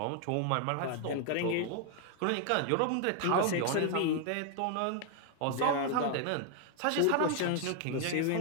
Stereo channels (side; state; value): both; different; correlation 0.00